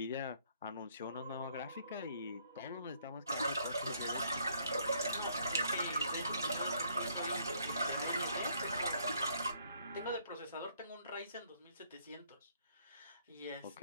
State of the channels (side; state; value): both; inverted; correlation -0.67